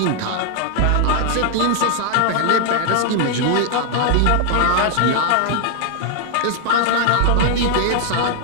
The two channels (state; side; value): different; both; correlation 0.00